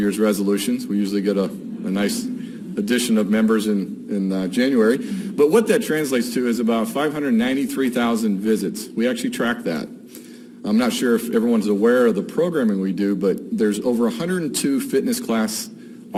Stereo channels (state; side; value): identical; both; correlation 1.00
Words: resolutions. We usually get a nice addition of members in January. But what that translates to is about 593,000 visits. We actually track that. I'm not sure if everyone's aware of the programming we do, but there's over 102 fitness class